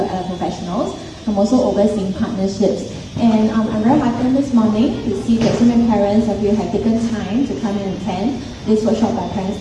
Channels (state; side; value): identical; both; correlation 1.00